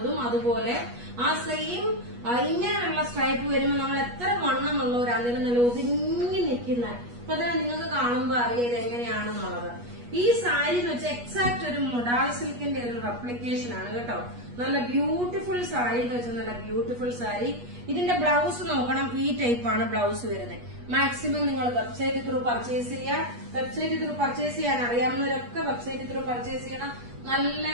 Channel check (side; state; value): left; late; 8.3 ms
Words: അതുപോലെ ആ സെയിം ഇങ്ങനെയുള്ള സ്ട്രൈപ്പ് വരുമ്പോൾ നമ്മൾ എത്ര വണ്ണമെന്നുള്ളവരാണെങ്കിലും നല്ല ഒതുങ്ങി നിൽക്കുന്ന, അപ്പൊ തന്നെ നിങ്ങൾക്ക് കാണുമ്പോ അറിയാം ഇത് എങ്ങനെയാണെന്നുള്ളത്. ഈ സാരി എന്ന് വെച്ചാൽ എക്സാക്ട് ഒരു മൊഡാൾ സിൽക്കിന്റെ ഒരു റെപ്ലിക്കേഷൻ ആണ് കേട്ടോ. നല്ല ബ്യൂട്ടിഫുൾ സാരി എന്ന് വെച്ചാൽ നല്ല ബ്യൂട്ടിഫുൾ സാരി. ഇതിന്റെ ബ്ലൗസ് നോക്കണം, ഈ ടൈപ്പാണ് ബ്ലൗസ് വരുന്നത്. മാക്സിമം നിങ്ങൾ വെബ്സൈറ്റ് ത്രൂ പർച്ചേസ് ചെയ്യുക. വെബ്സൈറ്റ് ത്രൂ പർച്ചേസ് ചെയ്യാൻ അറിയാവുന്നവരൊക്കെ വെബ്സൈറ്റ് ത്രൂ പർച്ചേസ് ചെയ്യണം. നല്ല